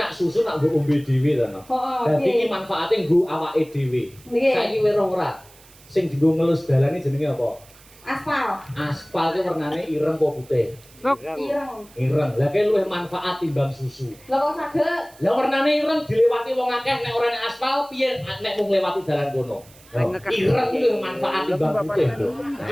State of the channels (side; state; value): right; noise; hiss, 25 dB below the sound